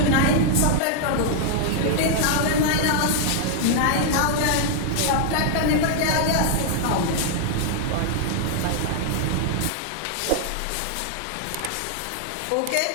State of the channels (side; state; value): both; different; correlation 0.00